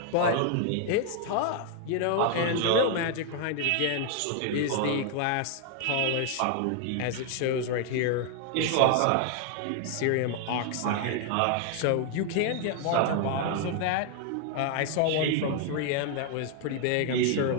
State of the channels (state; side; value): different; both; correlation 0.00